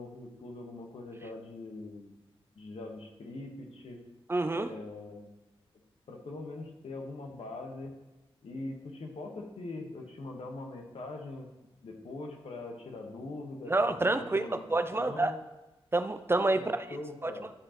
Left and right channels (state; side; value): normal; both; correlation 0.81